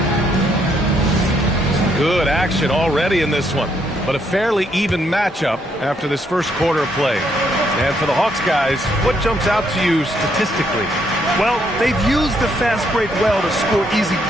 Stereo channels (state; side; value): normal; both; correlation 0.73